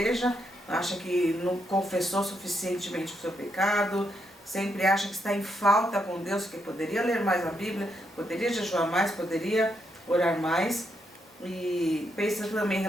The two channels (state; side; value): normal; both; correlation 0.79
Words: acha que não confessou suficientemente o seu pecado, sempre acha que está em falta com Deus, que poderia ler mais a Bíblia, poderia jejuar mais, poderia orar mais, e pensa também em